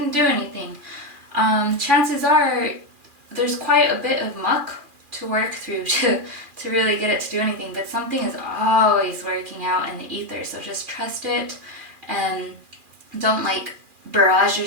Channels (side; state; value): left; late; 2.4 ms